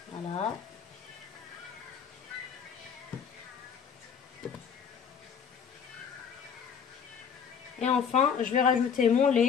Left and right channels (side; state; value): right; quieter; 7.1 dB